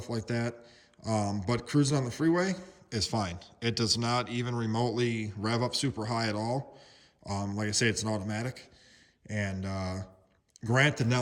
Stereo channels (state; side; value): identical; both; correlation 1.00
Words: like that. But cruising on the freeway is fine. It does not even remotely rev up super high at all. Like I say, it's an automatic. And granted,